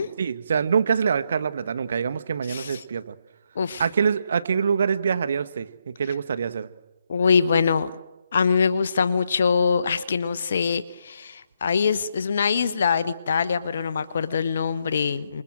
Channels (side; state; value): both; inverted; correlation -0.78